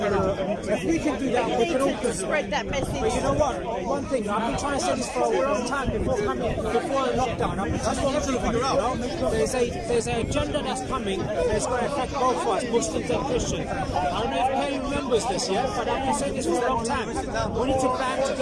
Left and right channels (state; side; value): identical; both; correlation 1.00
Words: we can do that, we can all spread that message. But you know what? One thing, I've been trying to say this for a long time before lockdown. I've been telling everybody, there's an agenda that's coming that's going to affect both of us, Muslims and Christians. I don't know if Kelly remembers this yet, but I've been saying this for a long time. We need to band